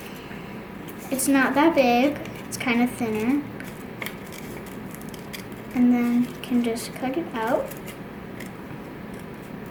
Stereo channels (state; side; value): identical; both; correlation 1.00